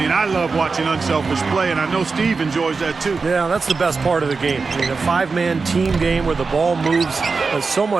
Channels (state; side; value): quieter; left; 4.5 dB